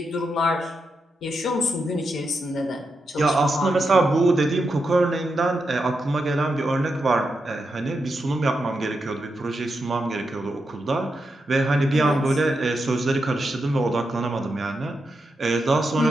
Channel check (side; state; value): both; normal; correlation 0.86